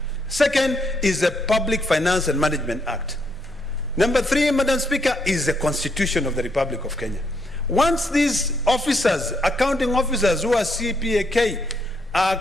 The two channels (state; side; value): normal; both; correlation 0.75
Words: Second is the Public Finance and Management Act. Number 3, Madam Speaker, is the Constitution of the Republic of Kenya. Once these officers, accounting officers who are CPAK,